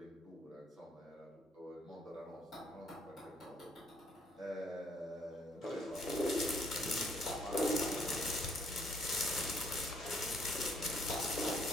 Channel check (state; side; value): normal; both; correlation 0.66